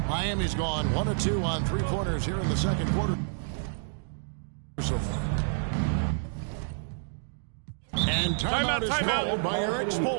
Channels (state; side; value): silent; left; digital silence